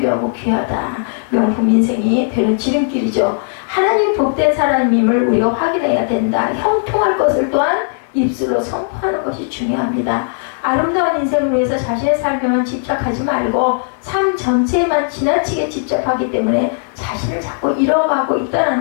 귀하다. 명품 인생이 되는 지름길이죠. 하나님 복된 사람임을 우리가 확인해야 된다. 형통할 것을 또한 입술로 선포하는 것이 중요합니다. 아름다운 인생을 위해서 자신의 삶에만 집착하지 말고 삶 전체에만 지나치게 집착하기 때문에 자신을 자꾸 잃어가고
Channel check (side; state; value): right; silent; 68 dB below the other